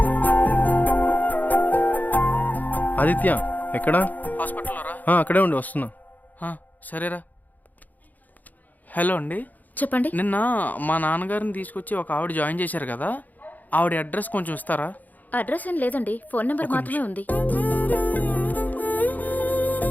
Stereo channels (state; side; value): late; right; 0.082 ms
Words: ఆదిత్య ఎక్కడా? హాస్పిటల్లో రా. అక్కడే ఉండి వస్తున్నా. సరేరా. హలో అండి, చెప్పండి. నిన్న మా నాన్నగారిని తీసుకొచ్చి ఒక ఆవిడ జాయిన్ చేశారు కదా, ఆవిడ అడ్రస్ కొంచెం ఇస్తారా? అడ్రస్ ఏం లేదండి, ఫోన్ నెంబర్ మాత్రమే ఉంది.